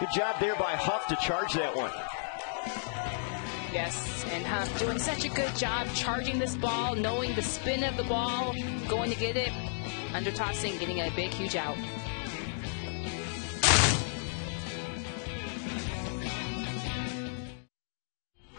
job there by Huff to charge that one. Yes, and Huff doing such a good job charging this ball, knowing the spin of the ball, going to get it, under tossing, getting a big, huge out.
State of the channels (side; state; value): right; silent; digital silence